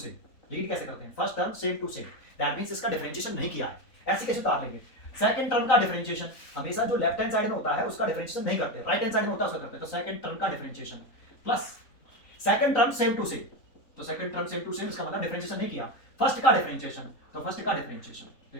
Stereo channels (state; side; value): late; right; 3.8 ms